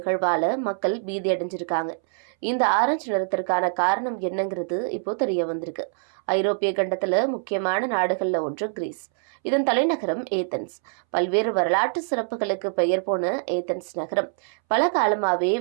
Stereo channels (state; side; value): silent; left; 62 dB below the other